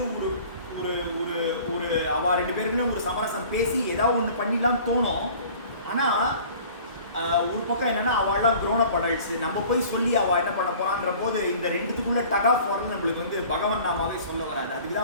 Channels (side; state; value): both; inverted; correlation -0.47